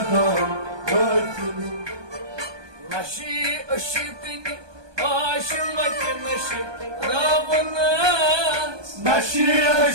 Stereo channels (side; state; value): left; late; 1.2 ms